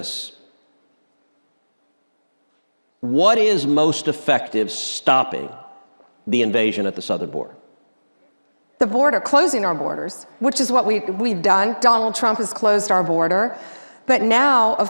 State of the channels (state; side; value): inverted; both; correlation -1.00